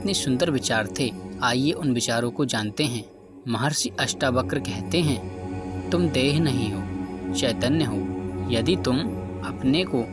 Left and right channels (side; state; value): both; identical; correlation 1.00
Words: सुंदर विचार थे, आइए उन विचारों को जानते हैं। महर्षि अष्टावक्र कहते हैं, तुम देह नहीं हो, चैतन्य हो। यदि तुम अपने को